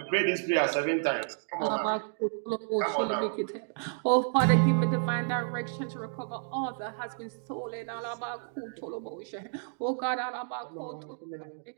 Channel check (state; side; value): silent; left; digital silence